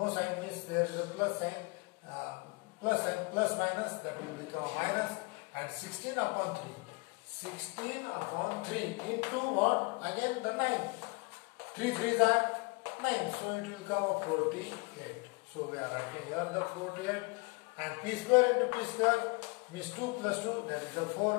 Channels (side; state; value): right; quieter; 29.2 dB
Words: sign means there is a plus sign, plus minus, that will become a minus, and 16 upon 3. 16 upon 3 into what? Again the 9. 3 3s are 9, so it will come a 48. So we are writing here the 48, and p square into p square means 2 plus 2, that is the